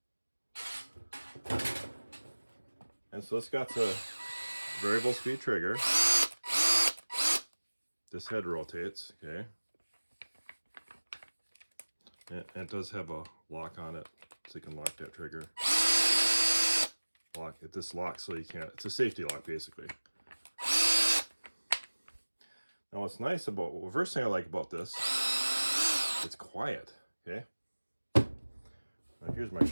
And so it's got the variable speed trigger. This head rotates, okay? And it does have a lock on it, so you can lock that trigger. Lock it. This locks so you can't. It's a safety lock, basically. Now, what's nice about, well, the first thing I like about this, it's quiet, okay? Now, here's my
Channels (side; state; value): both; inverted; correlation -1.00